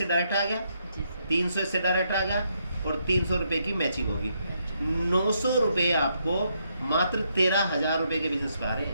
डायरेक्ट आ गया, 300 इससे डायरेक्ट आ गया, और 300 रुपये की मैचिंग होगी। 900 रुपये आपको मात्र 13,000 रुपये के बिजनेस पा रहे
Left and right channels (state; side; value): inverted; both; correlation -0.77